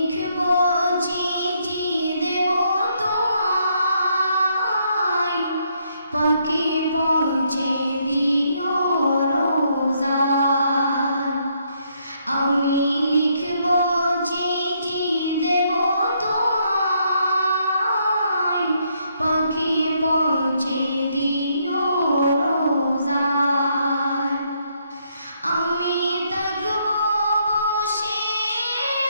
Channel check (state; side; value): inverted; both; correlation -0.73